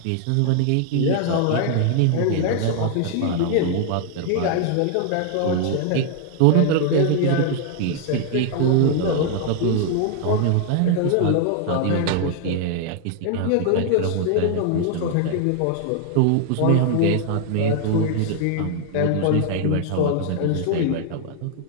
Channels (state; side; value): different; both; correlation 0.00